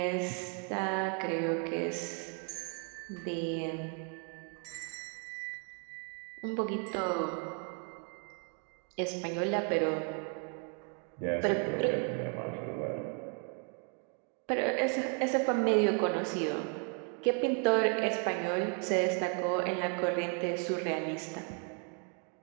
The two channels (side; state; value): left; quieter; 39.9 dB